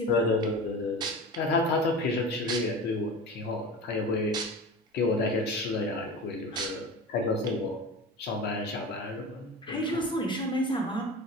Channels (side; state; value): both; normal; correlation 0.32